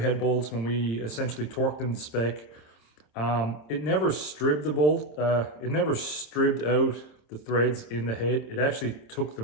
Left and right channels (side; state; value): right; late; 27 ms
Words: head bolts, when we essentially torqued them to spec, it never stripped the bolt, it never stripped out the threads in the head. It actually took